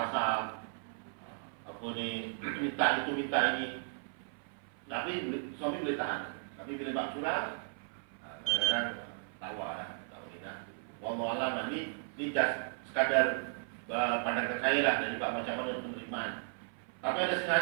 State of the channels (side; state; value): left; silent; 54 dB below the other